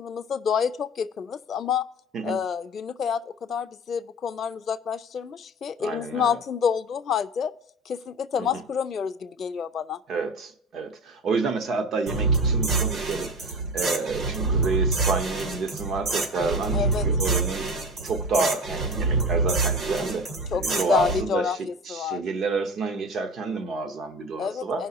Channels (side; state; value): both; normal; correlation 0.33